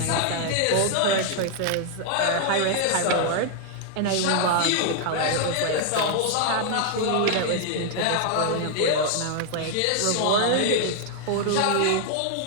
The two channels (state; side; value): different; both; correlation 0.00